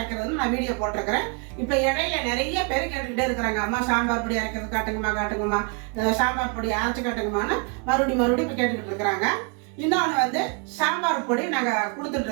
நான் வீடியோ போட்டிருக்கிறேன். இப்போ இடையில நிறைய பேர் கேட்டுக்கிட்டே இருக்கிறாங்க, அம்மா சாம்பார் பொடி அரைக்கிறது காட்டுங்கம்மா, சாம்பார் பொடி அரைச்சு காட்டுங்கம்மான்னு மறுபடியும் இப்போ கேட்டுக்கிட்டு இருக்கிறாங்க. இன்னொன்று சாம்பார் பொடி நாங்கள் கொடுத்துட்டு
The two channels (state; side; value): quieter; left; 35.3 dB